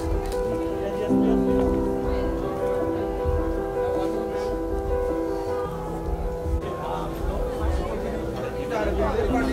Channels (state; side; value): identical; both; correlation 1.00